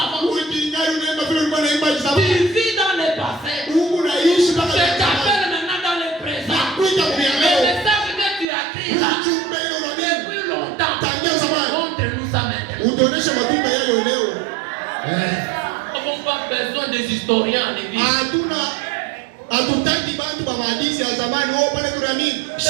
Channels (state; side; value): drops out; left; at 8.5 s